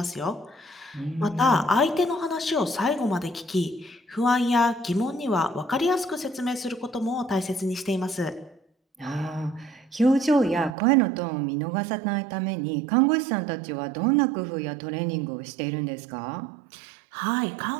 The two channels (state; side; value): drops out; left; at 10.8 s